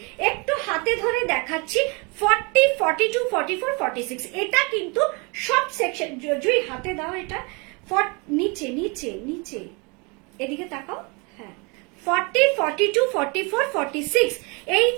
একটু হাতে ধরে দেখাচ্ছি, 40, 42, 44, 46, এটা কিন্তু সব সেকশন। জুই হাতে দাও এটা, নিচে নিচে নিচে, এদিকে তাকাও, হ্যাঁ 40, 42, 44, 46 এই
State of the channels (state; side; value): quieter; left; 30.0 dB